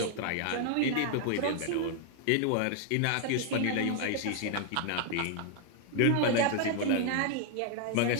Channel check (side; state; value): both; different; correlation 0.00